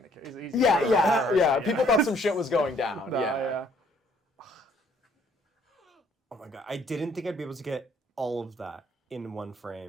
the case. Yeah. People thought some shit was going down. No, yeah. Oh my god, I didn't think I'd be able to get all of that in one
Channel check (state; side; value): normal; both; correlation 0.63